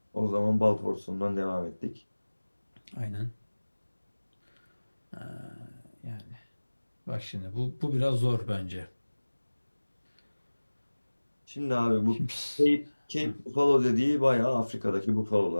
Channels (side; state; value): both; inverted; correlation -1.00